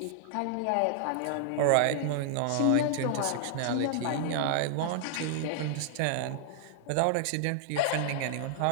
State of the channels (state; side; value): different; both; correlation 0.00